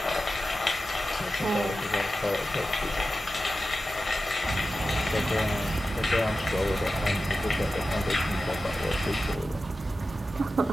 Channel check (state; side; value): normal; both; correlation 0.92